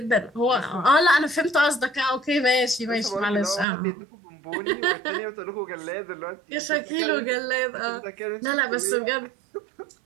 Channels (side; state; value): left; drops out; at 3.7 s